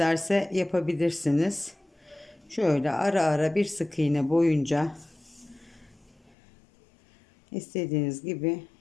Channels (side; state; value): right; drops out; at 6.4 s